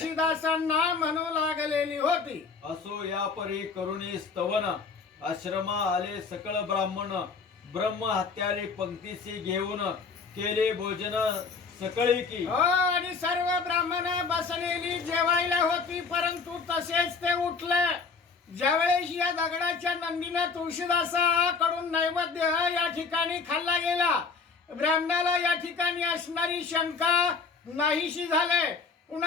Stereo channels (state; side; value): quieter; right; 4.9 dB